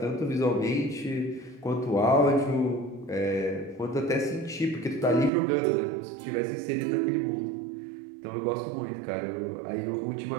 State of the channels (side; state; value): left; drops out; at 5.3 s